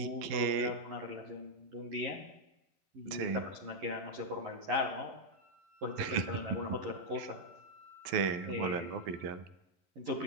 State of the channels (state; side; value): late; left; 12 ms